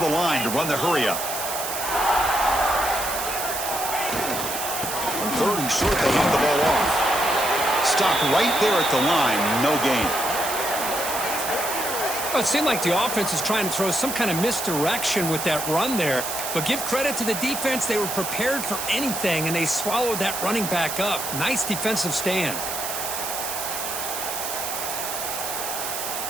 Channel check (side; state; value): right; noise; hiss, 4 dB below the sound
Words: line to run the hurry up. 3rd and short, they hand the ball off. Stopped right there at the line, no gain. Well, it seemed like the offense is trying to throw some kind of misdirection with that run there. But give credit to the defense. They were prepared for anything, and they swallowed that running back up. Nice defensive stand.